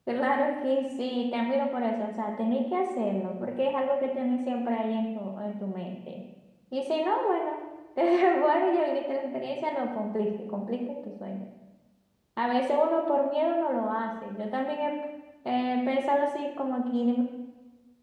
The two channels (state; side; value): identical; both; correlation 1.00